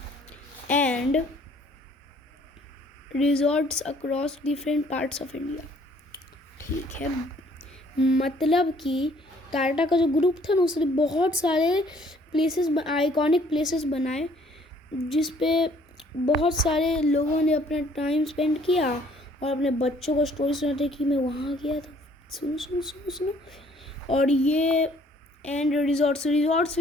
and resorts across different parts of India, ठीक है। मतलब कि टाटा का जो ग्रुप था ना, उसने बहुत सारे प्लेसेस, आइकॉनिक प्लेसेस बनाए, जिस पे बहुत सारे लोगों ने अपना टाइम स्पेंड किया और अपने बच्चों को स्टोरी सुनाते कि मैं वहाँ गया था, सुनो सुनो सुनो सुनो। और ये एंड रिजॉर्ट्स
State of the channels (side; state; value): both; normal; correlation 0.60